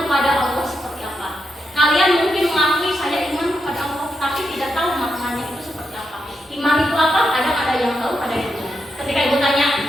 Allah seperti apa. Kalian mungkin mengakui saya iman kepada Allah, tapi tidak tahu maknanya itu seperti apa. Iman itu apa? Kadang ada yang tahu, ada yang tidak. Ketika ibu tanya,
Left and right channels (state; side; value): normal; both; correlation 0.84